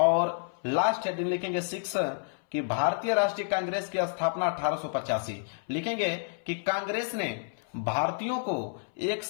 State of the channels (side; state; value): right; silent; 58 dB below the other